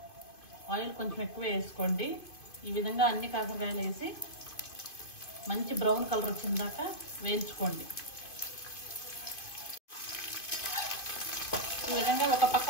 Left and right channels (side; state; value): right; late; 2.5 ms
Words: ఆయిల్ కొంచెం ఎక్కువ వేసుకోండి. ఈ విధంగా అన్ని కాకరకాయలు వేసి మంచి బ్రౌన్ కలర్ వచ్చిన దాకా వేయించుకోండి. ఈ విధంగా ఒక పక్క